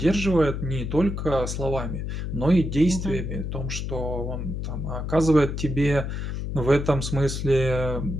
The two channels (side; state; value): left; noise; hum, 4 dB below the sound